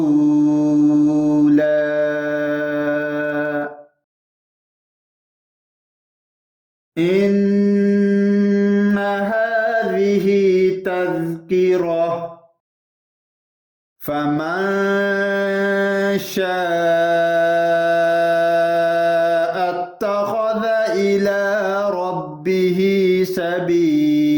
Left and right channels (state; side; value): identical; both; correlation 1.00